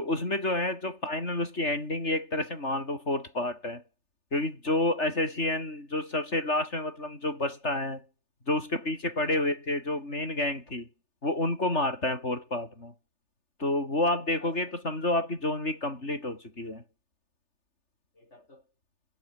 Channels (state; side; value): late; right; 3.4 ms